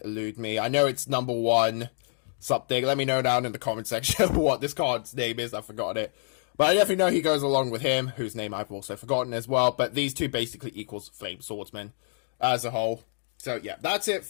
elude me. I know it's number 1 something. Let me know down in the comment section what this card's name is. I've forgotten it. But I definitely know he goes along with him, whose name I've also forgotten as well. But these two basically equals Flame Swordsman as a whole. So yeah, that's it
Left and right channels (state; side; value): silent; right; digital silence